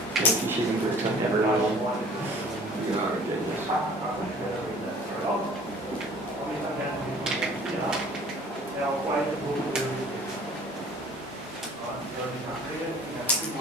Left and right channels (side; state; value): both; normal; correlation 0.50